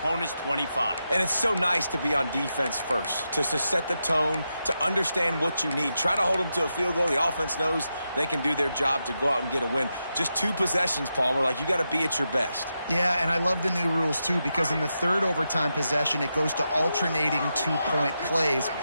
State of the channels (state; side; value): inverted; both; correlation -0.87